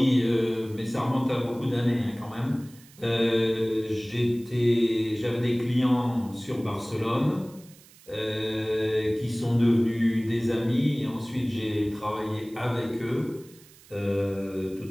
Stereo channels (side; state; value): right; noise; hiss, 24 dB below the sound